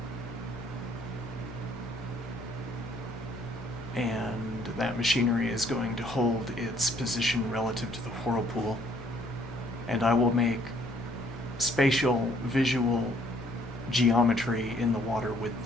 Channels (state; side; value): normal; both; correlation 0.63